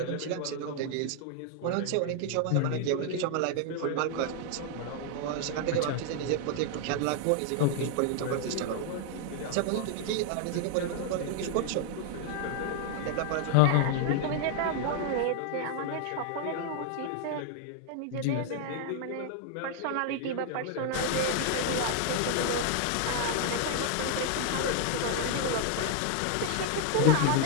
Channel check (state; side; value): different; both; correlation 0.00